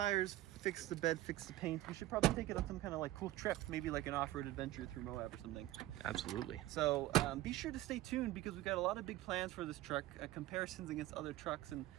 fix the bed, fix the paint, we should probably take it on some kind of like cool trip, maybe like an off-road adventure through Moab or something. Absolutely. So be sure to stay tuned because we've got a lot of big plans for this truck, comparisons against other trucks, and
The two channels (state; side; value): quieter; left; 15.7 dB